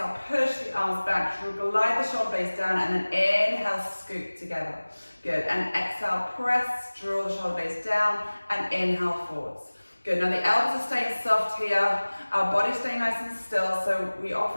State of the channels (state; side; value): inverted; both; correlation -1.00